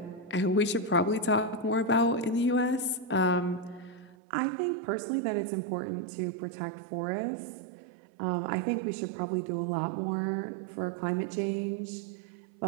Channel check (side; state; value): left; drops out; at 4.2 s